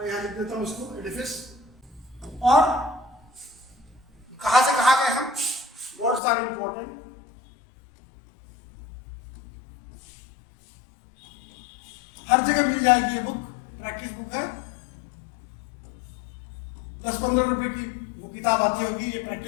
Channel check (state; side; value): drops out; right; at 6.2 s